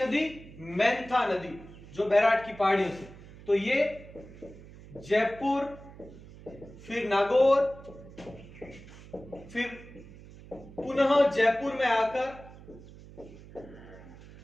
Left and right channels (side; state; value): right; noise; hum, 18 dB below the sound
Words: मेंथा नदी, जो बैराट की पहाड़ियों से। तो ये जयपुर, फिर नागौर, फिर पुनः जयपुर में आकर